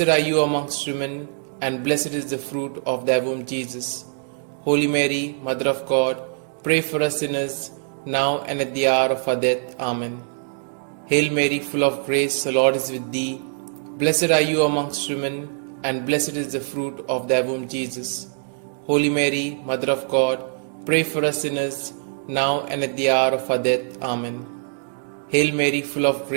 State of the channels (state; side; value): silent; left; digital silence